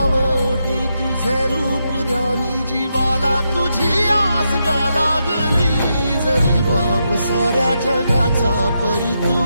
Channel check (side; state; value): both; inverted; correlation -0.83